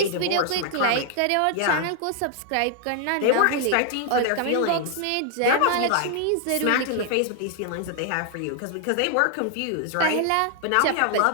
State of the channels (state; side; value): different; both; correlation 0.00